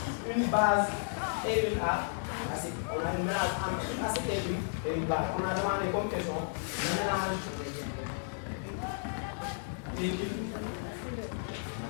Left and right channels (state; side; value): silent; right; digital silence